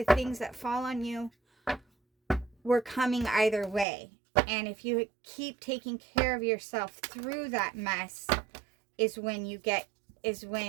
things that fall on you were coming either way. And if you keep taking care of yourself through that mess is when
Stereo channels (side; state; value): left; drops out; at 3.9 s